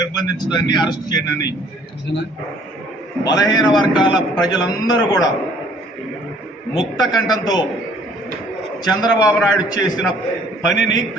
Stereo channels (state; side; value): normal; both; correlation 0.58